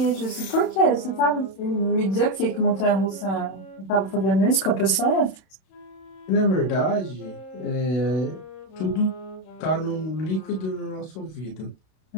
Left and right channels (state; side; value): late; right; 31 ms